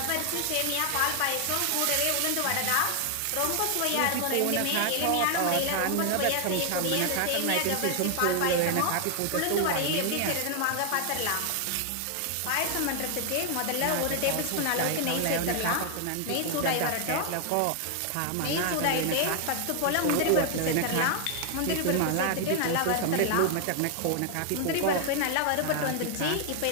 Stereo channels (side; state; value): both; different; correlation 0.00